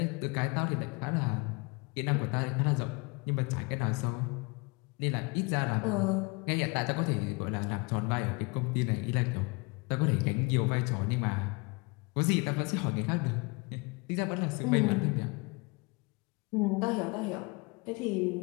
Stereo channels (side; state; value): right; quieter; 28.6 dB